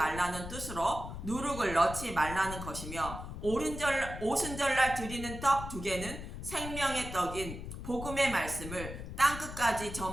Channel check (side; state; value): left; noise; rumble, 9 dB below the sound